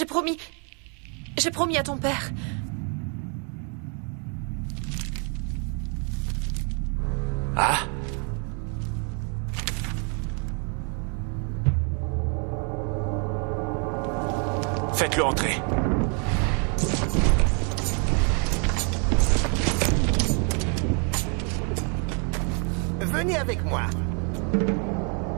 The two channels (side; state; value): left; quieter; 38.7 dB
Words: promis à ton père. Ah? Faites-le entrer. Venez avec moi.